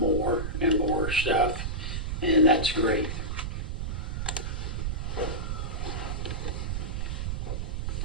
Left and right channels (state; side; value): noise; right; rumble, 2 dB below the sound